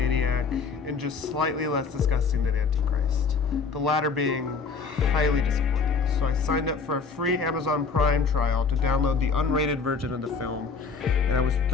and just slightly less disgusting than Antichrist, the latter being highly disappointing. So I signed up for a free Amazon Prime trial to download the unrated version of the film, and I was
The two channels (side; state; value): right; quieter; 5.1 dB